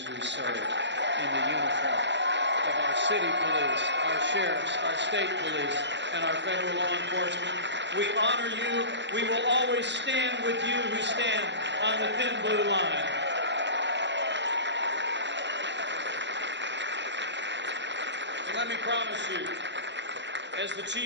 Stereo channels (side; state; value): left; late; 0.52 ms